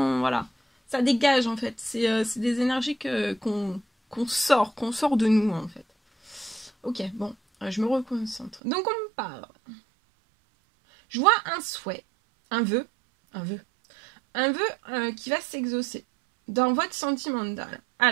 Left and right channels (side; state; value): left; drops out; at 8.6 s